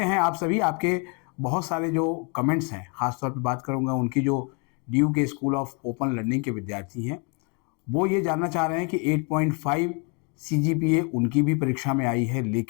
हैं आप सभी? आपके बहुत सारे जो कमेंट्स हैं, ख़ासतौर पे बात करूँगा उनकी जो डीयू के स्कूल ऑफ ओपन लर्निंग के विद्यार्थी हैं, वो ये जानना चाह रहे हैं कि 8.5 सीजीपीए उनकी भी परीक्षा में आई है,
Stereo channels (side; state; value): right; quieter; 33.8 dB